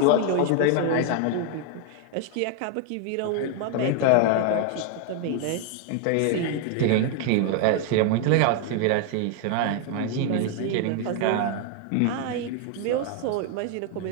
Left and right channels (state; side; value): different; both; correlation 0.00